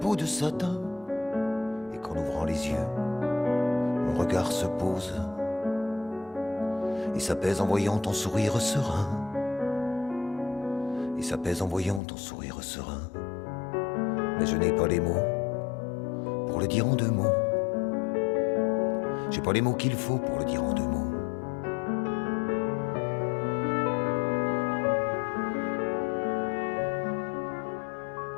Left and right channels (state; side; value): drops out; right; at 12.0 s